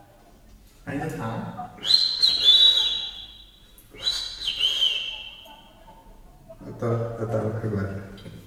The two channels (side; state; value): both; identical; correlation 1.00